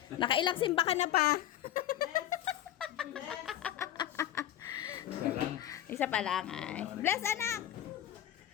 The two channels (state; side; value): quieter; right; 12.0 dB